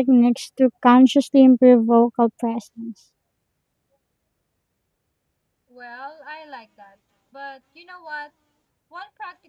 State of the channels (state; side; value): identical; both; correlation 1.00